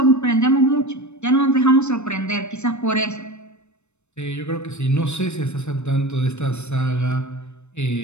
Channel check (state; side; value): late; right; 0.82 ms